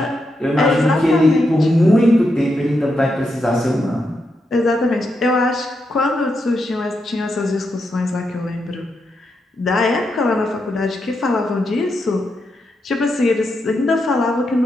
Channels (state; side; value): normal; both; correlation 0.84